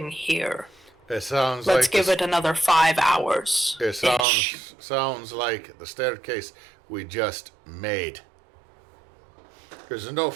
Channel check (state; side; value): drops out; left; at 4.2 s